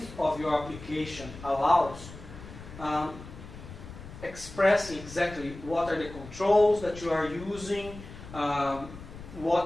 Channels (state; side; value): noise; left; rumble, 14 dB below the sound